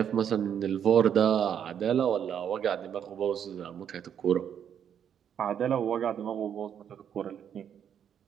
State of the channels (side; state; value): left; quieter; 8.7 dB